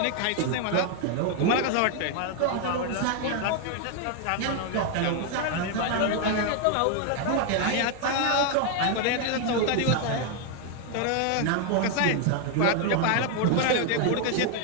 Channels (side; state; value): both; different; correlation 0.01